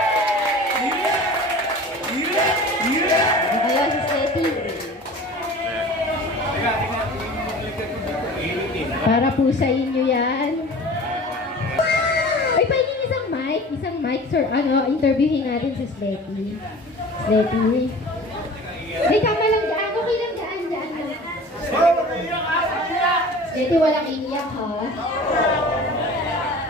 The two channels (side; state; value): both; normal; correlation 0.41